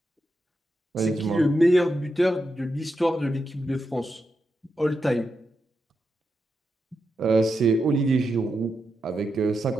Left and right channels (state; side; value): normal; both; correlation 0.86